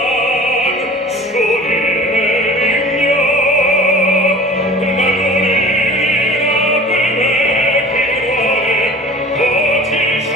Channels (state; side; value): normal; both; correlation 0.43